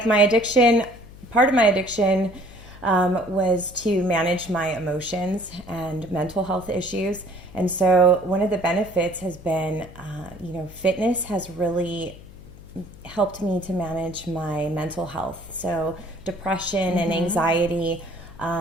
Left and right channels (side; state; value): left; noise; hum, 19 dB below the sound